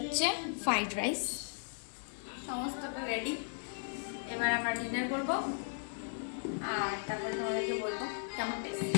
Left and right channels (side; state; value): right; silent; digital silence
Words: ফ্রাইড রাইস, সমস্তটা রেডি। এবার আমরা ডিনার করব আর তারপর তোমাদেরকে বলবো কেমন টেস্ট।